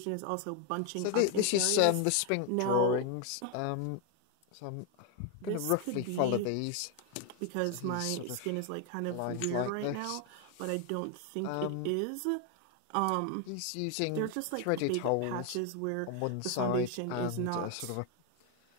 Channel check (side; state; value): both; different; correlation 0.01